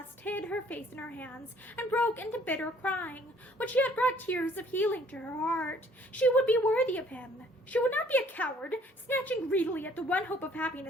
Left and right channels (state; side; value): normal; both; correlation 0.59